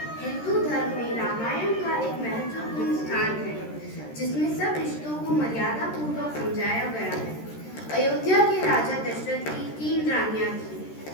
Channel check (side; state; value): right; late; 13 ms